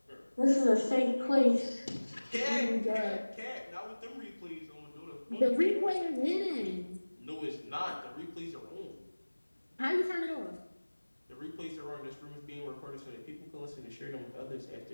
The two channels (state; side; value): inverted; both; correlation -1.00